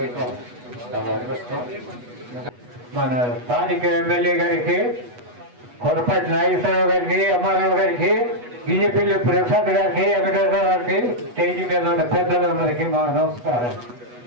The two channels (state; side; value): late; left; 8.2 ms